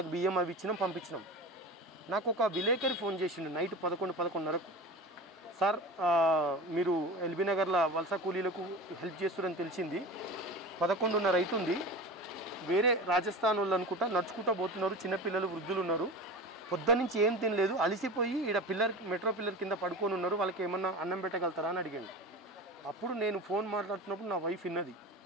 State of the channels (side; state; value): both; normal; correlation 0.31